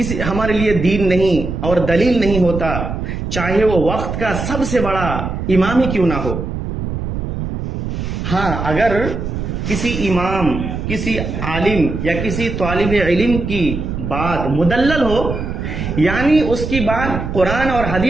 ہمارے لیے دین نہیں اور دلیل نہیں ہوتا، چاہے وہ وقت کا سب سے بڑا امام ہی کیوں نہ ہو. ہاں، اگر کسی امام، کسی عالم یا کسی طالب علم کی بات مدلل ہو، یعنی اس کی بات قرآن اور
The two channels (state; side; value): noise; right; rumble, 5 dB below the sound